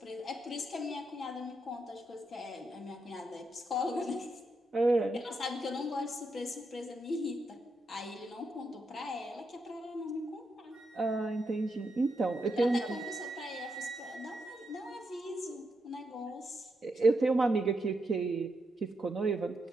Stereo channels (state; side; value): normal; both; correlation 0.82